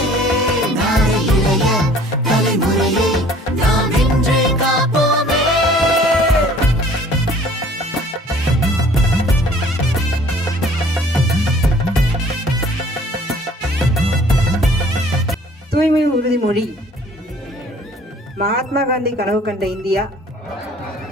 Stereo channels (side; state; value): both; normal; correlation 0.53